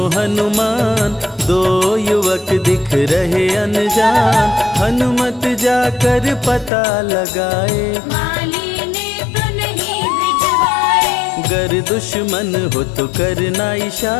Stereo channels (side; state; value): right; drops out; at 6.7 s